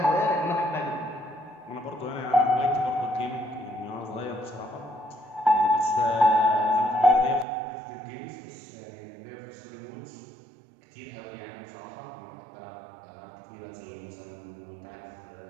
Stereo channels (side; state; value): left; drops out; at 7.5 s